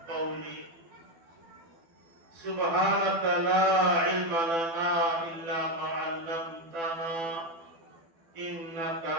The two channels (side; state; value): left; late; 12 ms